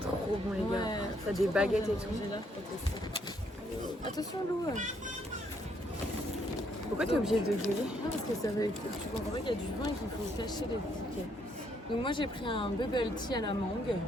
bon, les gars. T'as des baguettes et tout. Attention Lou. Pourquoi t'es obligée de gueuler? Non parce que ça va, tu comprends qu'il y a du vin et qu'il faut cacher les tickets. Donc moi j'ai pris un bubble tea à la mangue,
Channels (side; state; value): both; normal; correlation 0.71